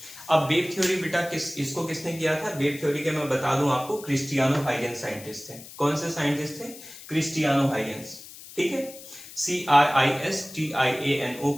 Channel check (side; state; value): left; noise; hiss, 16 dB below the sound